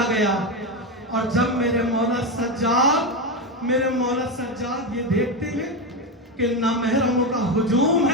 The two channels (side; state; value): both; normal; correlation 0.13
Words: गया। और जब मेरे मौला सज्जाद ये देखते हैं कि नामहरमों का हुजूम